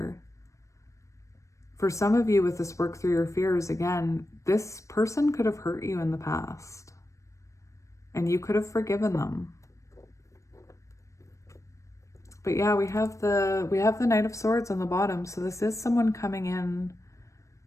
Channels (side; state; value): right; late; 0.15 ms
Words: For some of you with this work through your fears, again, this person could have hurt you in the past, and you could have forgiven them. But yeah, we have the Knight of Swords on the bottom. So this is someone coming in